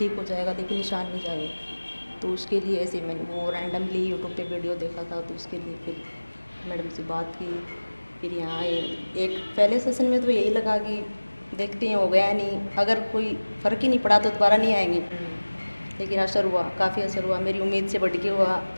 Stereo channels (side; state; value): both; inverted; correlation -1.00